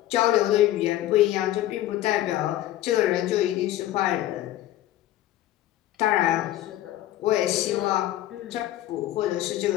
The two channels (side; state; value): right; quieter; 13.8 dB